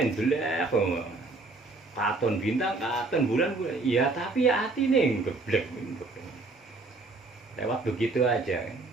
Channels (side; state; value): left; quieter; 3.4 dB